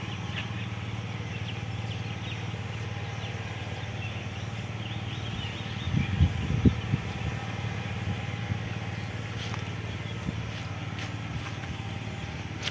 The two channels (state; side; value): identical; both; correlation 1.00